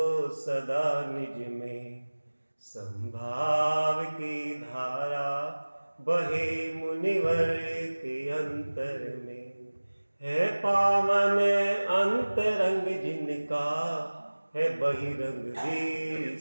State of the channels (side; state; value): both; inverted; correlation -1.00